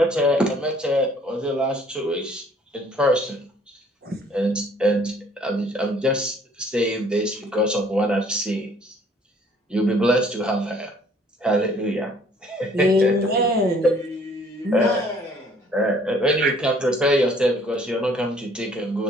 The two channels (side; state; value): both; normal; correlation 0.58